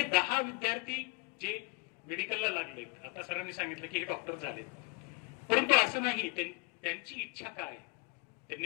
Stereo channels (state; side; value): quieter; right; 27.0 dB